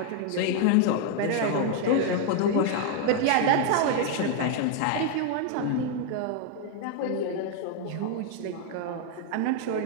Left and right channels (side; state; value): both; different; correlation 0.00